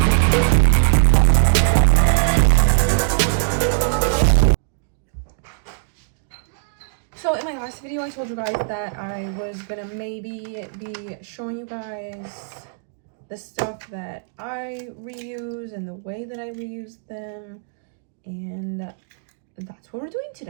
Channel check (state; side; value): silent; left; digital silence